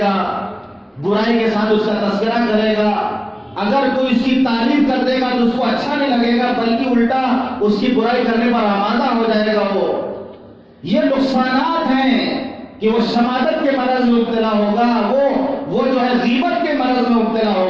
گا، برائی کے ساتھ اس کا تذکرہ کرے گا، اگر کوئی اس کی تعریف کر دے گا تو اس کو اچھا نہیں لگے گا بلکہ الٹا اس کی برائی کرنے پر آمادہ ہو جائے گا۔ یہ نقصانات ہیں کہ وہ شماتت کے مرض میں مبتلا ہوگا، وہ جو ہے غیبت کے مرض میں مبتلا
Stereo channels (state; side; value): identical; both; correlation 1.00